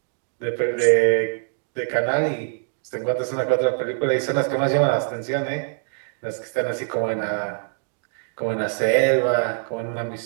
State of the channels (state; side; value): silent; left; 63 dB below the other